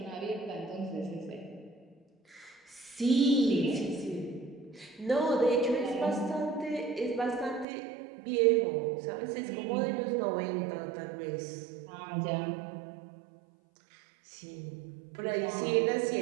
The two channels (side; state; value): left; drops out; at 7.7 s